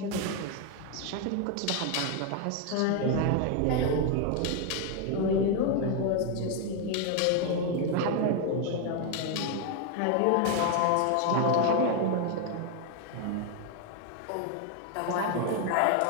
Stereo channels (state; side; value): different; both; correlation 0.01